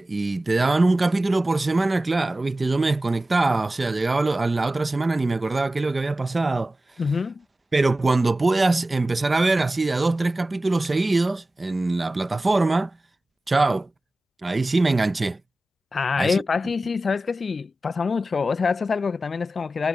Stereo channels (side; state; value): both; normal; correlation 0.95